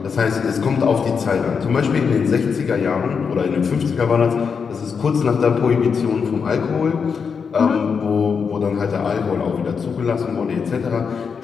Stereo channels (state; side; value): quieter; right; 6.0 dB